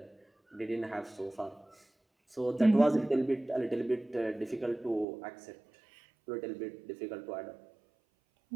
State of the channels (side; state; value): left; drops out; at 5.1 s